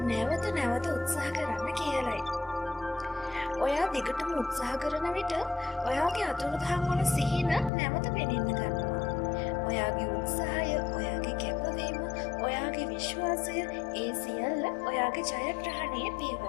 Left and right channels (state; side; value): drops out; right; at 7.7 s